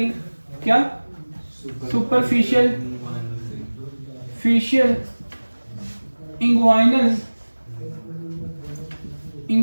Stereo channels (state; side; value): inverted; both; correlation -1.00